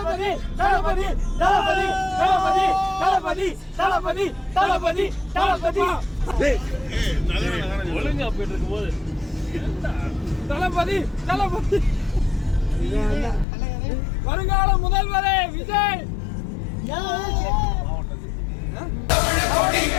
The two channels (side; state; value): right; drops out; at 13.5 s